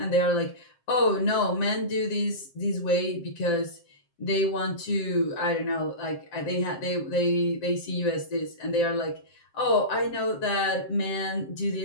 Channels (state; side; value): late; right; 7.6 ms